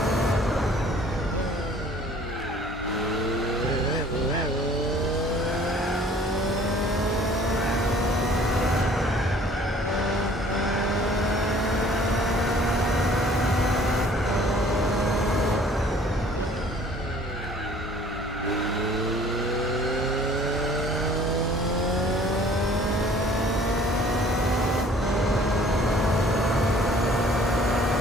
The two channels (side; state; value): both; normal; correlation 0.54